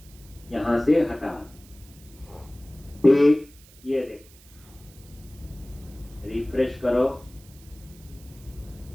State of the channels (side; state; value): right; noise; hiss, 24 dB below the sound